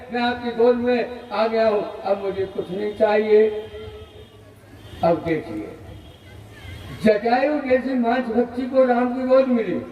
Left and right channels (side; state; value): both; identical; correlation 1.00